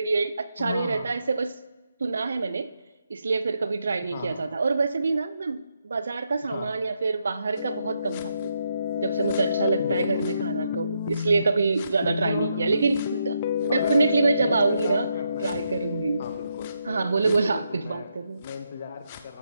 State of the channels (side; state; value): both; inverted; correlation -0.80